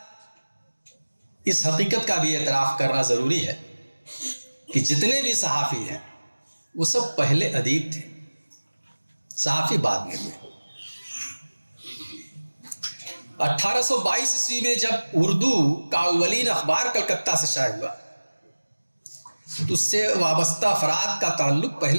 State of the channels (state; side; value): inverted; both; correlation -1.00